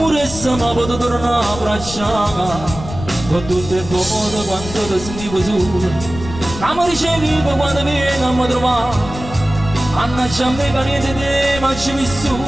ma potevo tornare a abbracciare, con tutto il modo quando ti sentivo solo, che mi ricevevo quando vieni a mi trovare. Mannaggia a me che niente di te ma ci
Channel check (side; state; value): left; noise; rumble, 11 dB below the sound